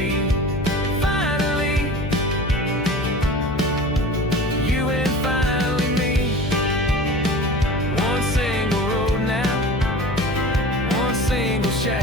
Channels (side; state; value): left; noise; hum, 8 dB below the sound